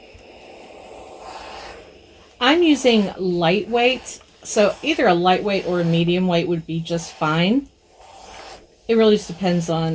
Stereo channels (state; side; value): identical; both; correlation 1.00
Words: I'm using lightweight, so either a lightweight or a medium weight would be just fine. It really just depends